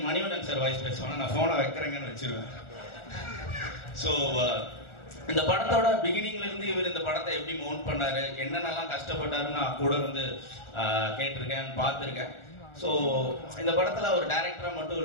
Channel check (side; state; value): right; late; 1.4 ms